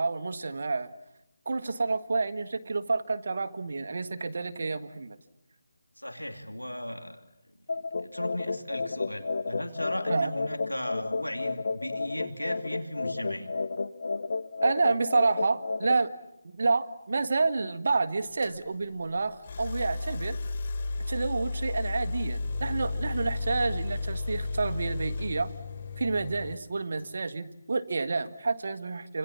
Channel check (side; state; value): both; inverted; correlation -0.93